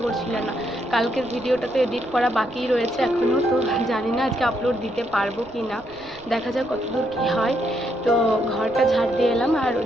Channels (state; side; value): noise; right; rumble, 23 dB below the sound